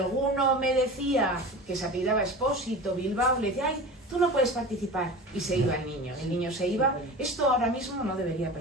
me decía que se apellidaba Espósito, Bilbao, le decía, ay, tú no puedes participar, y se iba el niño se iba. Esto ahora mismo no debería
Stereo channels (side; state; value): both; normal; correlation 0.33